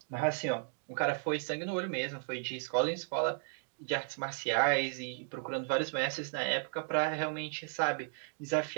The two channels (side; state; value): left; silent; 55 dB below the other